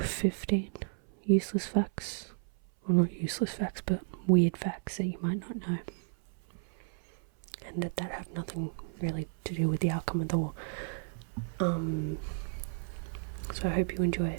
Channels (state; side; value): silent; left; 56 dB below the other